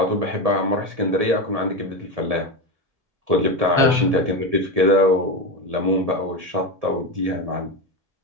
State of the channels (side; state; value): left; late; 1.7 ms